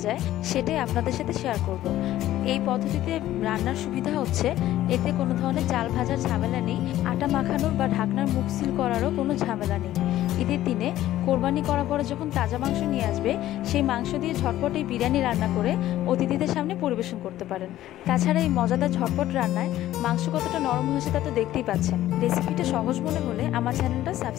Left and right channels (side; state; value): right; quieter; 13.9 dB